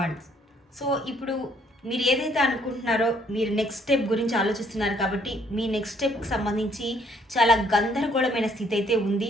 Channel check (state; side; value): normal; both; correlation 0.65